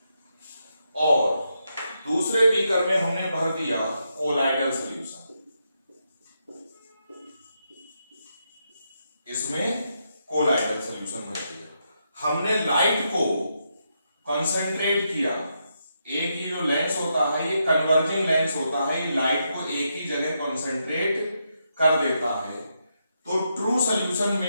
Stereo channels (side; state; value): both; inverted; correlation -0.82